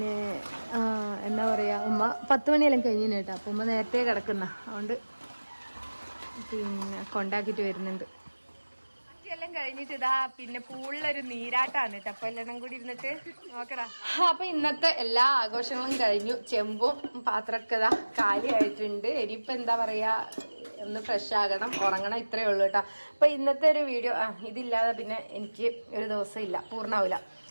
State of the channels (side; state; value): both; inverted; correlation -1.00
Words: എന്താ പറയാ, ഉമ്മ 10 മണിയെല്ലാം കഴിഞ്ഞു കേട്ടോ. അപ്പൊ ഉമ്മ നേരത്തെ കിടക്കുന്ന അതുകൊണ്ട് പിന്നെ കൊണ്ടാക്കിട്ട് വരുന്നുണ്ട്. എല്ലാം കഴിഞ്ഞിട്ട് ഇതാ പിന്നെ പൂളിലൊരു നീരാട്ടാണ് കേട്ടോ. അപ്പൊ എല്ലാം കൂടി ഇരുന്നിട്ട് നോക്കടാ. അപ്പൊ ഇന്നത്തെ എല്ലാ ആഘോഷങ്ങളും കഴിഞ്ഞു. ചെമ്പും പാത്രമൊക്കെ ഇതാ കാലിയായിട്ടുണ്ട്. ഇനിയിപ്പൊ എന്താ പറയാ, ഒന്ന് ഫ്രഷ് ആകണം, ഉറങ്ങണം. ഇത്രയേ ഉള്ളൂ കേട്ടോ. അപ്പൊ ഇന്നത്തെ ഒരു വീഡിയോ ഇതില്ലാതെ പിന്നെ എനിക്ക് ഒരു ദിവസം ഇല്ല, പൂർണ്ണാവില്ല.